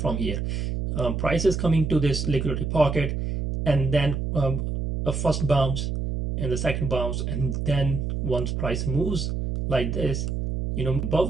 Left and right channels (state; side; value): noise; right; hum, 2 dB below the sound